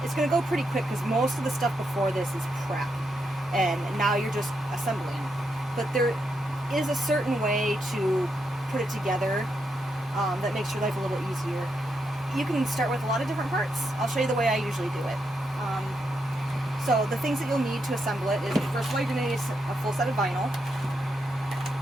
It's going to go pretty quick because most of the stuff before this is prep, and now you're just assembling. But there is a certain way to put it together that makes your life a little easier. You can start with a lot of different parts. I'll show you the way I usually do it. So the things that you'll need to assemble it is, first of all, you're going to need a full set of vinyl.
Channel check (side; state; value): both; normal; correlation 0.82